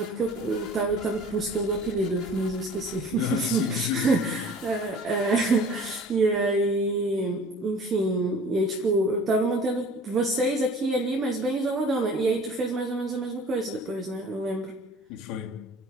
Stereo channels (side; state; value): both; normal; correlation 0.47